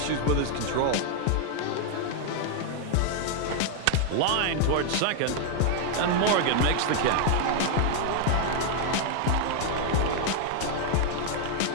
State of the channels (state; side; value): different; both; correlation 0.00